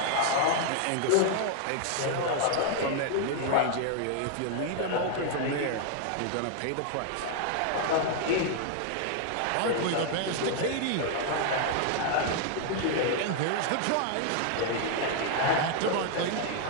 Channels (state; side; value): different; both; correlation 0.00